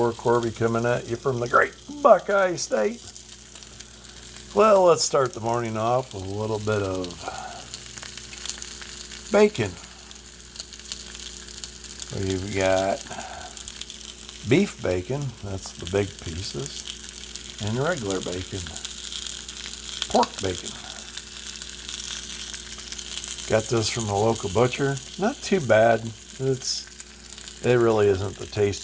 Corby coming at you from the great Buckeye State. Well, let's start the morning off with a little bit of bacon. We've got beef bacon, that's the big pieces, and regular bacon, pork bacon. Got this from a local butcher. Not too bad. It really isn't the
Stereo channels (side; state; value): both; identical; correlation 1.00